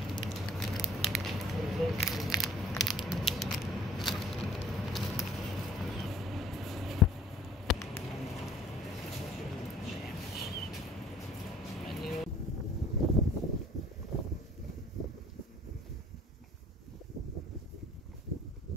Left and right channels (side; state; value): both; normal; correlation 0.54